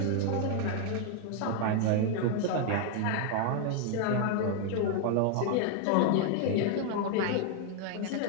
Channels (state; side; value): different; both; correlation 0.00